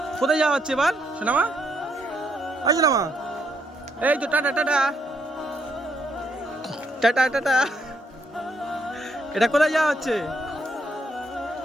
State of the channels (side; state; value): both; normal; correlation 0.74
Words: কোথায় যাওয়া হচ্ছে এবার সোনামা? আসো না মা। এই তো টাটা টাটা টাটা টাটা। এটা কোথায় যাওয়া হচ্ছে?